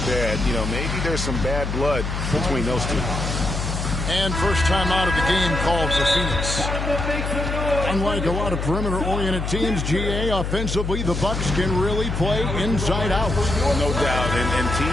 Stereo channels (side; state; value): left; noise; hum, 3 dB below the sound